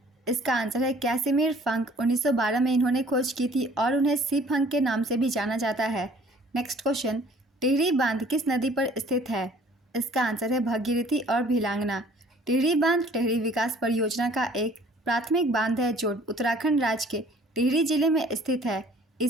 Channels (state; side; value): normal; both; correlation 0.54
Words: इसका आंसर है कैसिमिर फंक। 1912 में इन्होंने खोज की थी और उन्हें सी फंक के नाम से भी जाना जाता है। नेक्स्ट क्वेश्चन, टिहरी बांध किस नदी पर स्थित है? इसका आंसर है भगीरथी और भिलांगना। टिहरी बांध टिहरी विकास परियोजना का एक प्राथमिक बांध है जो उत्तराखंड राज्य के टिहरी जिले में स्थित है।